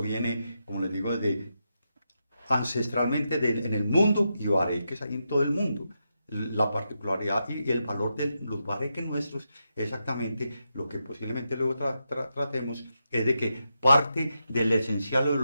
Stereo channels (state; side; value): inverted; both; correlation -0.86